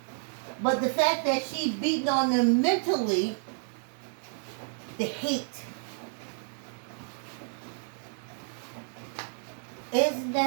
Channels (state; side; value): silent; left; digital silence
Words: But the fact that she's beating on them mentally, the hate. Isn't